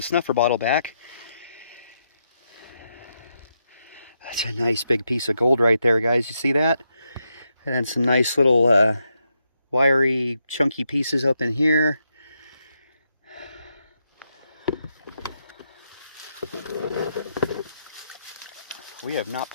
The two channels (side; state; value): both; inverted; correlation -0.82